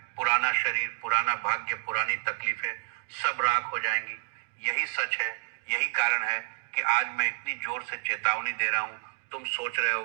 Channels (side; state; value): left; silent; 58 dB below the other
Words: पुराना शरीर, पुराना भाग्य, पुरानी तकलीफें सब राख हो जाएंगी। यही सच है, यही कारण है कि आज मैं इतनी जोर से चेतावनी दे रहा हूँ। तुम सोच रहे